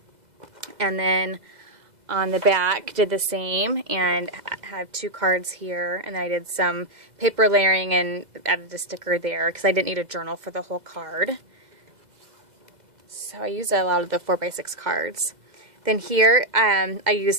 And then on the back, did the same, and have 2 cards here. And then I did some paper layering and added a sticker there because I didn't need a journal for the whole card. So I used a lot of the 4x6 cards. Then here, I used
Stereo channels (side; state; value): left; late; 2.0 ms